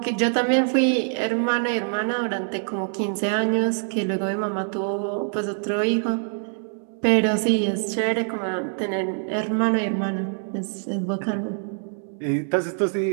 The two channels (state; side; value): silent; left; digital silence